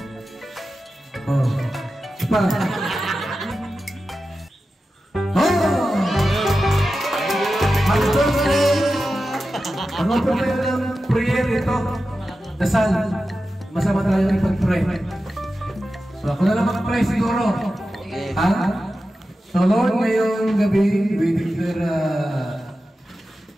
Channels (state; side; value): normal; both; correlation 0.92